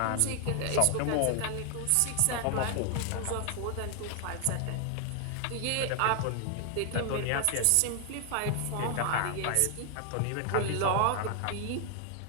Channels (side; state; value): both; different; correlation 0.00